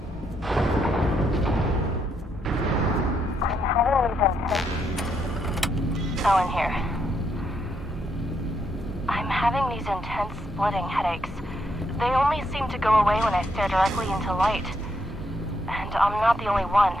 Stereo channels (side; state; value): both; normal; correlation 0.76